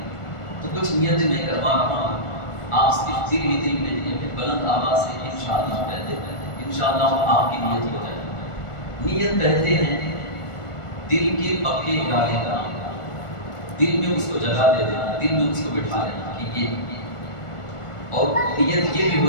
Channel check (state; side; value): late; right; 1.4 ms